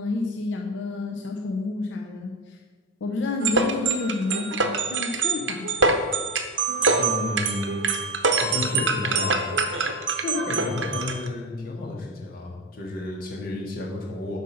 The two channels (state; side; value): normal; both; correlation 0.16